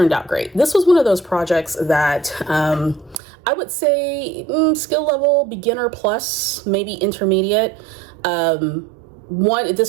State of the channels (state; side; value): drops out; left; at 3.2 s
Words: out great. This was one of those projects that I would say skill level beginner plus, maybe intermediate.